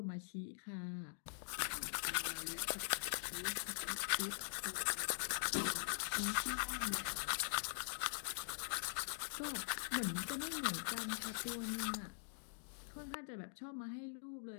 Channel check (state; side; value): silent; right; digital silence